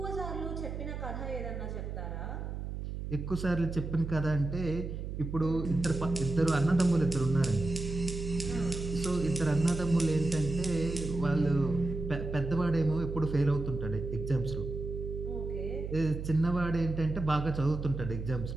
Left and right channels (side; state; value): right; noise; hum, 6 dB below the sound